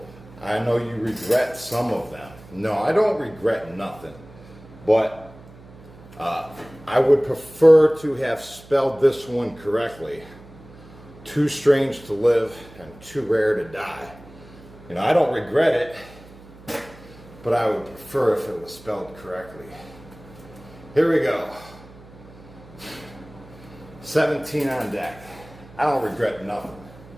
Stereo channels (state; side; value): noise; right; hum, 21 dB below the sound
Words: I know you regret some of them. No, I don't regret nothing. But I would prefer to have spelled this one correctly. Too strange to live and too rare to die. You know, I don't regret it, but I would prefer if it was spelled correctly. Here we go. 17 on deck. I don't regret nothing.